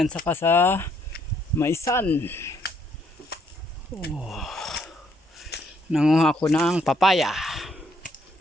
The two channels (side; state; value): both; normal; correlation 0.70